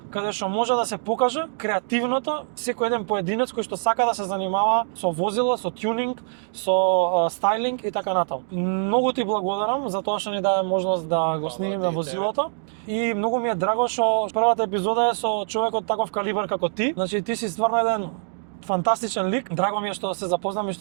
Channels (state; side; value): silent; left; digital silence